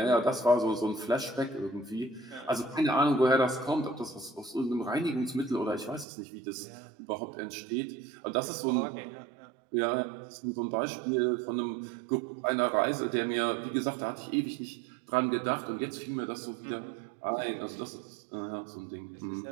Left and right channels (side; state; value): left; drops out; at 6.1 s